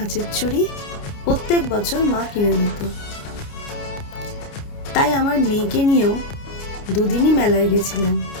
চুড়ি প্রত্যেক বছর মা কিনে দিত। তাই আমার মেয়েকে নিয়েও 2 দিনই মেলায় গেছিলাম,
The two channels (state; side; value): late; right; 29 ms